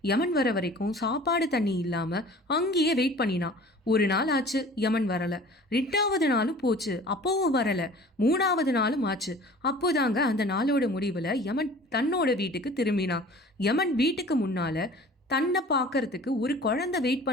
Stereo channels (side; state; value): both; normal; correlation 0.45